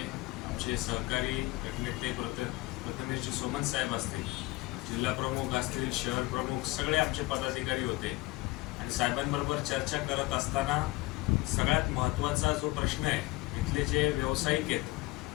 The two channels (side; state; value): right; quieter; 21.3 dB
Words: आमचे सहकारी गटनेते प्रथमेशजी सोमन साहेब असतील, जिल्हा प्रमुख असतील, शहर प्रमुख, सगळे आमचे पदाधिकारी होते आणि साहेबांबरोबर चर्चा करत असताना सगळ्यात महत्त्वाचा जो प्रश्न आहे, इथले जे व्यावसायिक